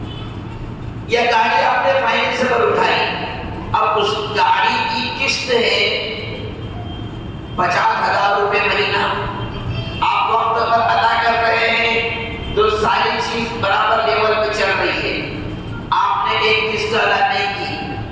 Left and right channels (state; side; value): identical; both; correlation 1.00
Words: یا گاڑی آپ نے فائنینس پر اٹھائی، اب اس گاڑی کی قسط ہے 50,000 روپے مہینہ، آپ وقت پر ادا کر رہے ہیں تو ساری چیز برابر لیول پہ چل رہی ہے، آپ نے ایک قسط ادا نہیں